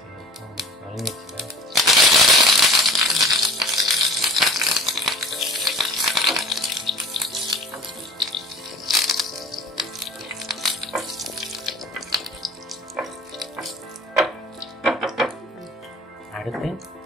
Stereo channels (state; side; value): normal; both; correlation 0.44